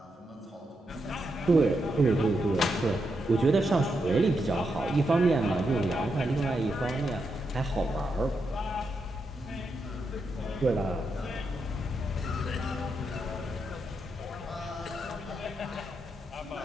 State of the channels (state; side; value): normal; both; correlation 0.83